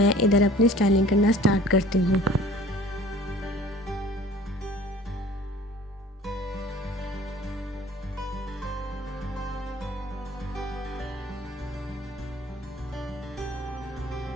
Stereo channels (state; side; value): normal; both; correlation 0.49